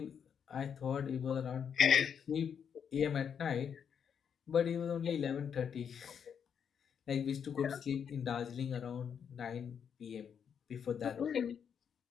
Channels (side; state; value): right; quieter; 7.6 dB